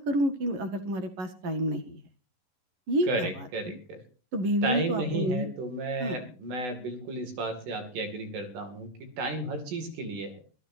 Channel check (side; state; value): left; late; 11 ms